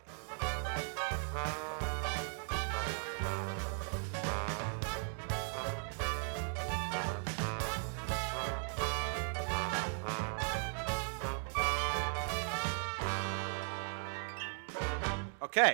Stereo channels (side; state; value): left; silent; 53 dB below the other